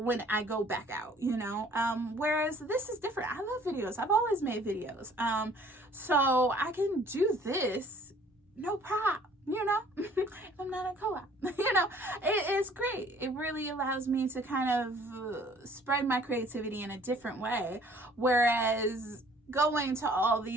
I go back out, you know. Whereas this is different. I love videos. I've always made videos. So I can do this, no problem. You know, I'm not a co-op, you know, it's great. It really allows me to kind of spread my creativity in a different way. Whereas going to all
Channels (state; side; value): normal; both; correlation 0.56